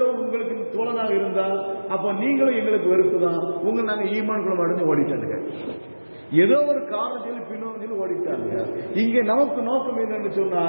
உங்களுக்கு தோழனாக இருந்தால் அப்ப நீங்களும் எங்களுக்கு வெறுப்பு தான், உங்களை நாங்க ஈமான்குள்ள அடைஞ்சு ஓடிட்டாங்க. ஏதோ ஒரு காரணம் சொல்லி பின்னோக்கி ஓடிட்டாங்க. இங்கே நமக்கு நோக்கம் என்னன்னு சொன்னா,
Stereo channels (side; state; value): both; inverted; correlation -1.00